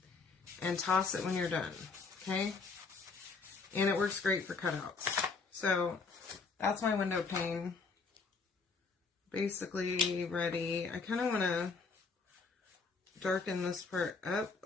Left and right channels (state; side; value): quieter; right; 4.5 dB